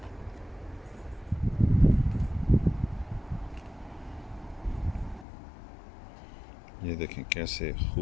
ये देखें कैसे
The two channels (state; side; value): drops out; right; at 5.2 s